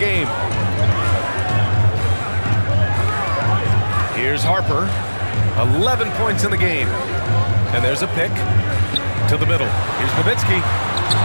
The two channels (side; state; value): both; inverted; correlation -1.00